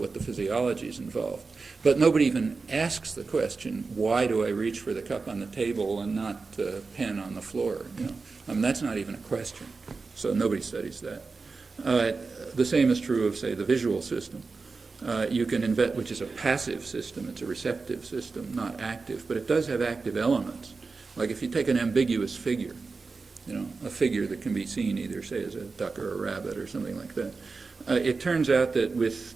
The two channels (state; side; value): quieter; left; 4.3 dB